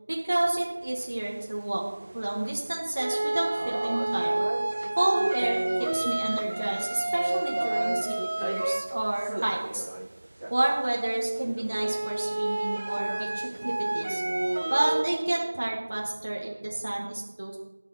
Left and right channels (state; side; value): inverted; both; correlation -1.00